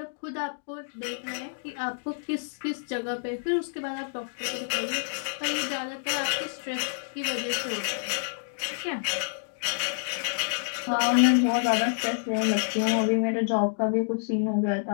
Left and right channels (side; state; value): right; silent; digital silence